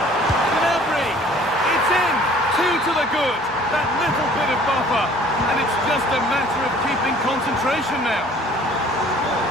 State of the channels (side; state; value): both; normal; correlation 0.52